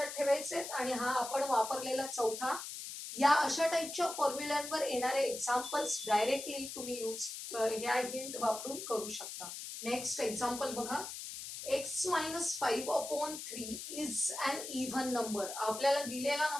ठेवायचे आणि हा आपण वापरलेला चौथा. या अशा टाईपच्या फॉर्म्युल्यांवर येणारे एक्झाम्पल्स डायरेक्टली तुम्ही ह्या हिंट वापरून करू शकता. नेक्स्ट एक्झाम्पल बघा, x minus 5 upon 3 is an even number. आपल्याला दिलेला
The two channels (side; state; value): left; noise; hiss, 8 dB below the sound